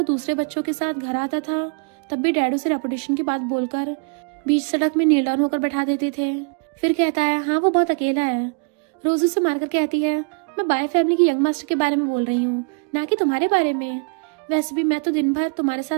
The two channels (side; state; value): left; quieter; 36.6 dB